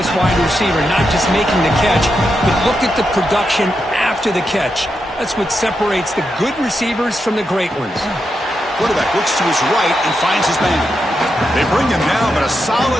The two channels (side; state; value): both; normal; correlation 0.85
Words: wide receiver, not just making the catch, but look at the production after the catch. That's what separates the good receivers from the great ones. Quarterback looks to his right and finds his man. They bring him down, but a